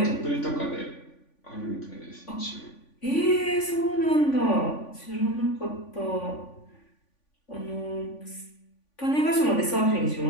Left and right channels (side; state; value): right; late; 3.5 ms